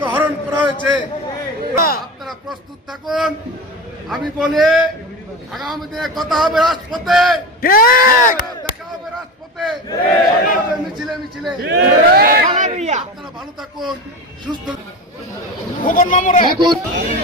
হরণ করা হয়েছে। আপনারা প্রস্তুত থাকুন। আমি বলি আগামী দিনে কথা হবে রাজপথে, দেখা হবে রাজপথে, মিছিলে মিছিলে। আপনারা ভালো থাকুন, সুস্থ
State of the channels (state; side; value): normal; both; correlation 0.25